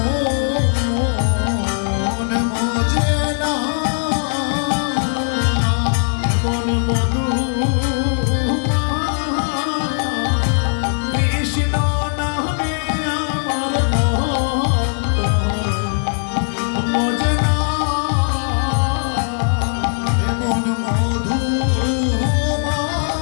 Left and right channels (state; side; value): silent; right; 65 dB below the other